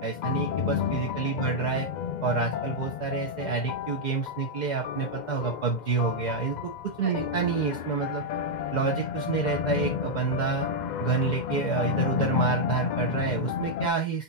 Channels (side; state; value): right; late; 2.1 ms